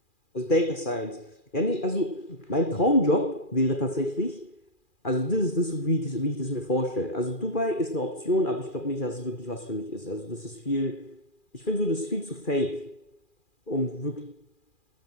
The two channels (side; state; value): right; late; 2.4 ms